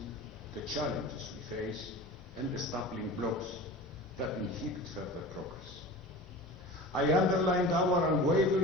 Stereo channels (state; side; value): normal; both; correlation 0.36